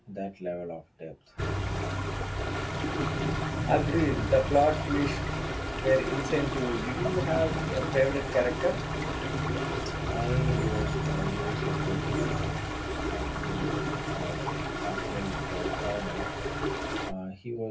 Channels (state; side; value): identical; both; correlation 1.00